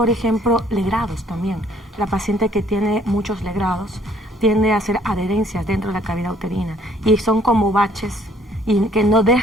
ejemplo, legrados también. La paciente que tiene muchos legrados tiende a hacer adherencias dentro de la cavidad uterina y son como baches y que no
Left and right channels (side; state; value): both; normal; correlation 0.61